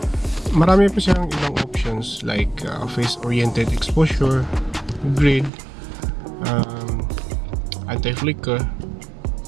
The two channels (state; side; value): drops out; left; at 5.5 s